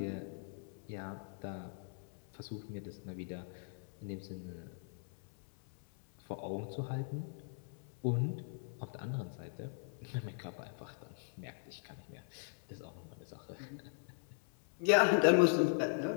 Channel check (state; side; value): silent; right; 51 dB below the other